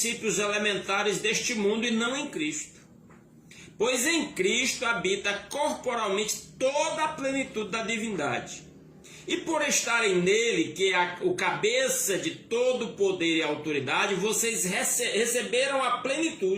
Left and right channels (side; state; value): both; identical; correlation 1.00